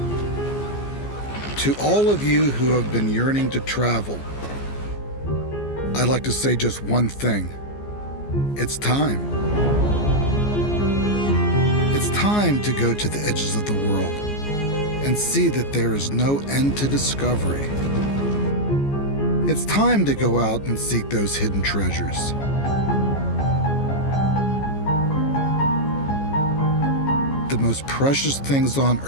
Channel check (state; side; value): late; right; 14 ms